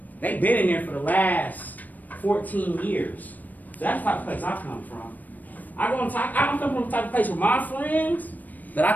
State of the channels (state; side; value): late; right; 0.083 ms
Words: They've been in there for the last 14 years. So that's the type of place I come from. I come from the type of place where my friends, that I